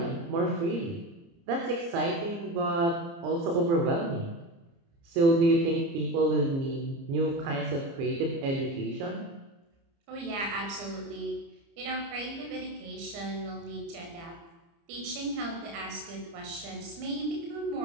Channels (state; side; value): late; left; 30 ms